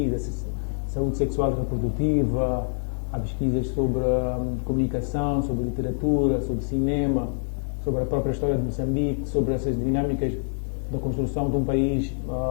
saúde sexual e reprodutiva, há pesquisas sobre comunicação, sobre literatura, sobre cinema, sobre a própria história de Moçambique, sobre essas dinâmicas da construção de um país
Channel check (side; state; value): right; silent; digital silence